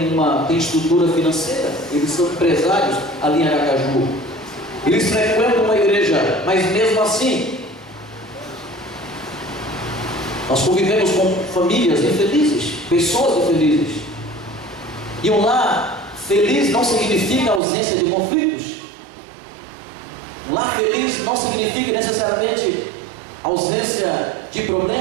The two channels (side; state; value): left; drops out; at 17.6 s